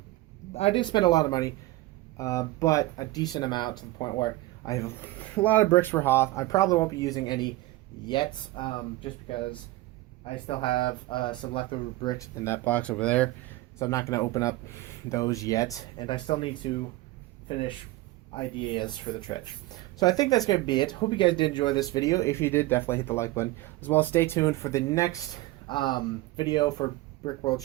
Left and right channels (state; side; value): quieter; left; 18.1 dB